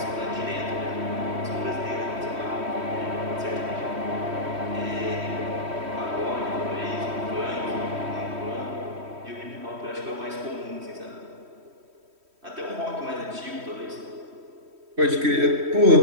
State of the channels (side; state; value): left; late; 3.1 ms